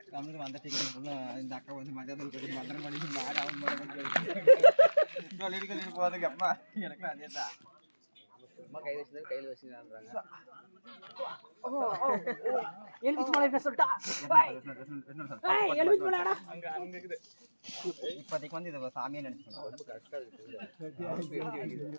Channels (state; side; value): inverted; both; correlation -1.00